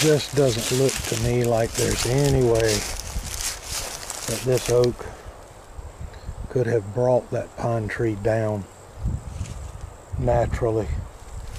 doesn't look to me like there's any way that this oak could have brought that pine tree down naturally.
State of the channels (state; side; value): identical; both; correlation 1.00